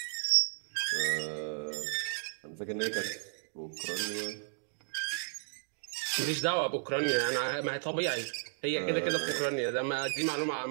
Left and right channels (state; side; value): silent; left; digital silence